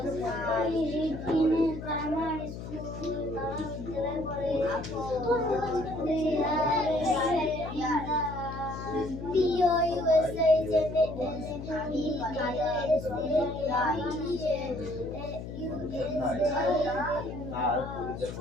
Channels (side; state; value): left; noise; hum, 9 dB below the sound